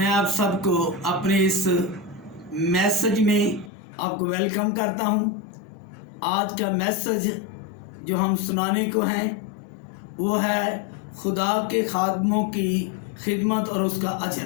आप सबको अपने इस मैसेज में आपको वेलकम करता हूँ। आज का मैसेज जो हम सुनाने को हैं वो है खुदा के खादमों की खिदमत और उसका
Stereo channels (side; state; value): right; drops out; at 3.7 s